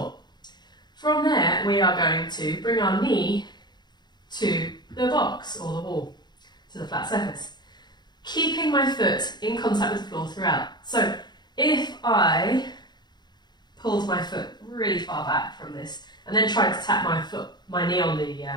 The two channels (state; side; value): late; right; 0.21 ms